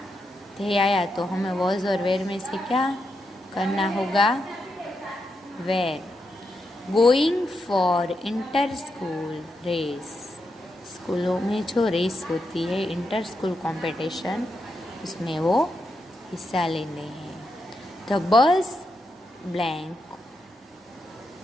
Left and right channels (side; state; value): both; normal; correlation 0.84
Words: थे आया तो हमें वॉज और वेयर में से क्या करना होगा, were. Going for inter school race. स्कूलों में जो रेस होती है, इंटर स्कूल कॉम्पिटिशन, उसमें वो हिस्सा लेने हैं. द बस ब्लैंक